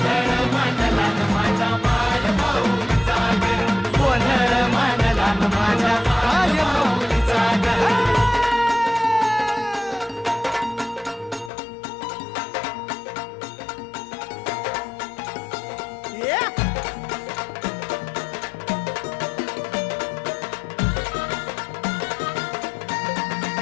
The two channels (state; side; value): drops out; right; at 11.5 s